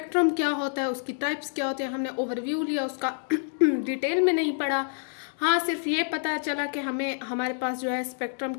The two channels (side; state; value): right; silent; digital silence